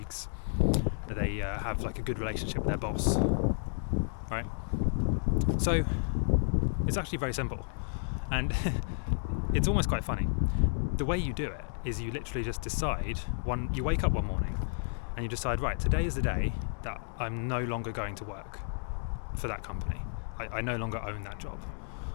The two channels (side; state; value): right; silent; digital silence